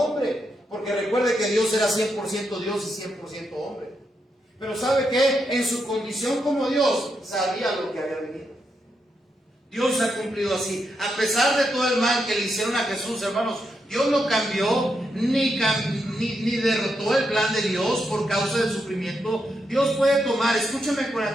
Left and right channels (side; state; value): both; normal; correlation 0.82